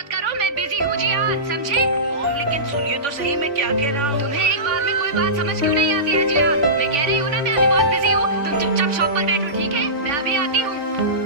करो, मैं बिजी हूँ जियान, समझे? मॉम लेकिन सुनिए तो सही, मैं क्या कह रहा हूँ। तुम्हें एक बार में कोई बात समझ क्यों नहीं आती है जियान? मैं कह रही हूँ ना, मैं अभी बहुत बिजी हूँ। तुम चुपचाप शॉप पर बैठो, ठीक है? मैं अभी आती हूँ।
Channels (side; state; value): left; late; 3.5 ms